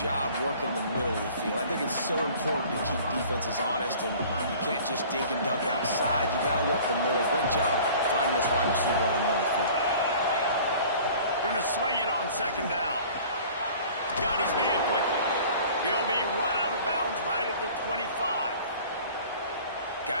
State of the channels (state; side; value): inverted; both; correlation -0.47